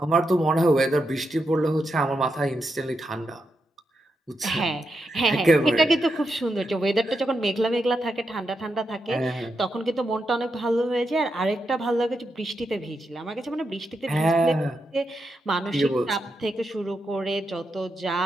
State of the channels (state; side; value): normal; both; correlation 0.85